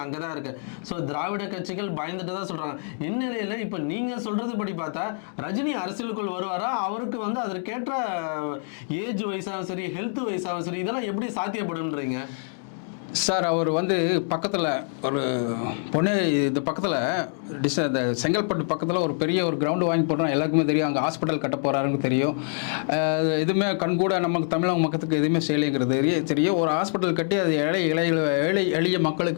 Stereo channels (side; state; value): right; silent; digital silence